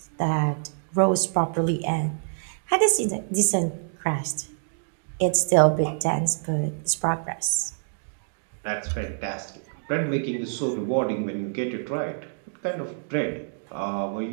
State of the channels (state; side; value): silent; left; digital silence